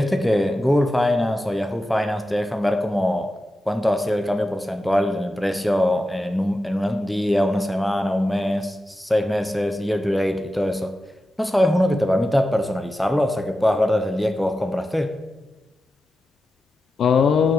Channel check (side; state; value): both; normal; correlation 0.91